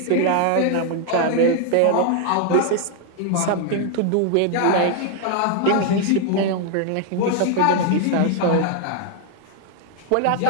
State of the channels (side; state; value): both; different; correlation 0.00